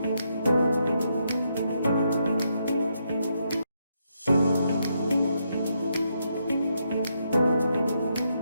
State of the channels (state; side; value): inverted; both; correlation -0.79